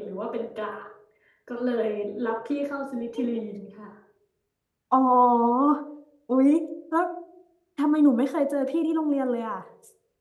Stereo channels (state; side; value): identical; both; correlation 1.00